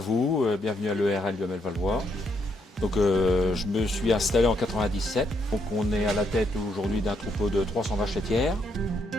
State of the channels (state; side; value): normal; both; correlation 0.75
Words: bienvenue à l'ERL du ML Valois. Donc je me suis installé en 97. Donc on est à la tête aujourd'hui d'un troupeau de 300 vaches laitières.